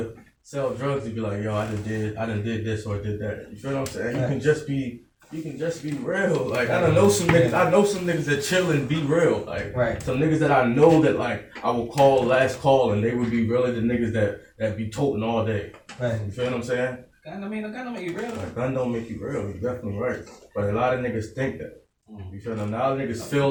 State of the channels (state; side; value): identical; both; correlation 1.00